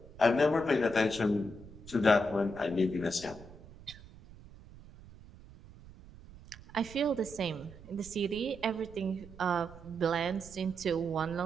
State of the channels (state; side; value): noise; right; rumble, 19 dB below the sound